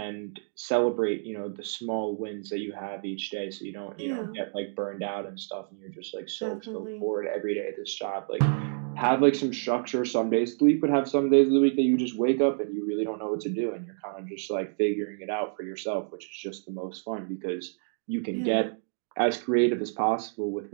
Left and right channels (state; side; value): silent; left; digital silence